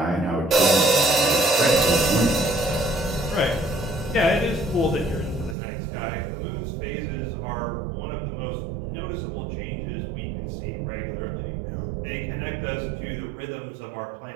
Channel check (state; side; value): drops out; left; at 5.6 s